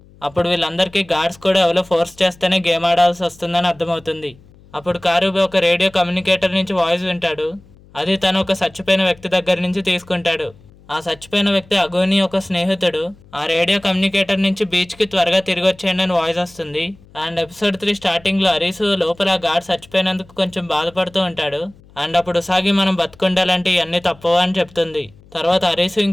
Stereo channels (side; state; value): left; noise; hum, 26 dB below the sound